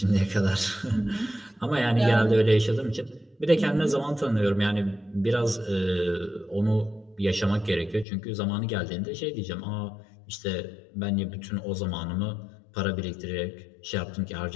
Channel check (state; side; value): drops out; right; at 8.1 s